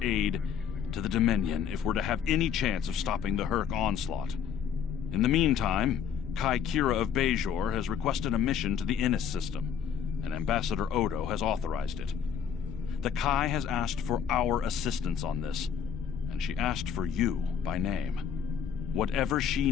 aid to the Dominion if we're to have any chance of stopping the Herc onslaught. In the meantime, Kai Kira of Bajor has requested a mission to the Innis system, and Ambassador Odo has authorized it. The Kai has asked for our assistance on this, and she asked for you by name. Whatever she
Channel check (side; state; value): right; quieter; 7.7 dB